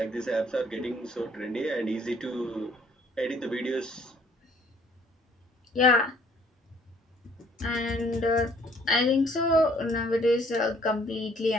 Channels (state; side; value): normal; both; correlation 0.60